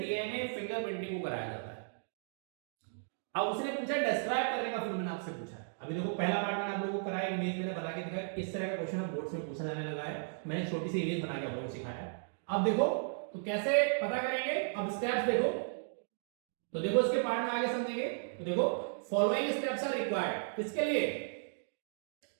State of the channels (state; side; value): silent; left; digital silence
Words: फिंगरप्रिंटिंग को कराया जाता है। अब उसने पूछा डिस्क्राइब करने का, फिर मैंने आपसे पूछा। अभी देखो पहला पार्ट मैंने आप लोगों को कराया, इमेज मैंने बना के दिखाया। इस तरह का क्वेश्चन अब बोर्ड में पूछा जाने लगा है, मैंने छोटी सी इमेज बना के आप लोगों को सिखाया। अब देखो तो कैसे पता करेंगे, अब स्टेप्स देखो। तो देखो इसके पार्ट में आगे समझेंगे। तो देखो फॉलोइंग स्टेप्स आर रिक्वायर्ड, किसके लिए?